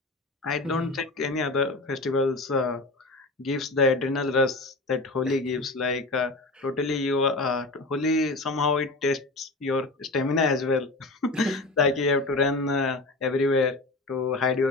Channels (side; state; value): right; quieter; 3.1 dB